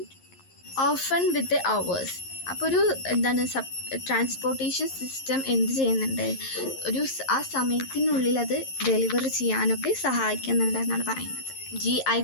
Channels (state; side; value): late; right; 11 ms